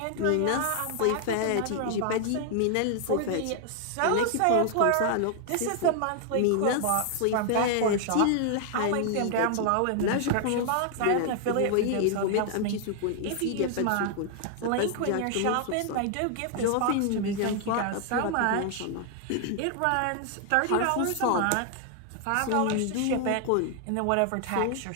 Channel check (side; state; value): both; different; correlation 0.00